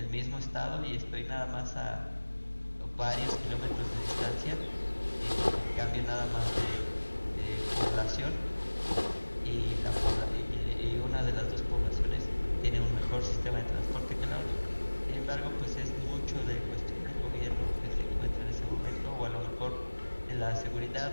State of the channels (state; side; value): inverted; both; correlation -1.00